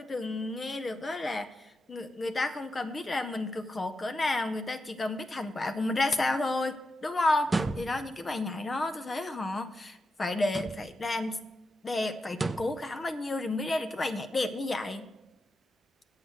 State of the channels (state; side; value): normal; both; correlation 0.88